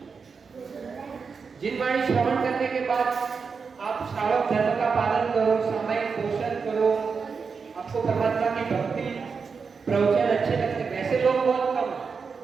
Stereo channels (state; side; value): quieter; left; 5.4 dB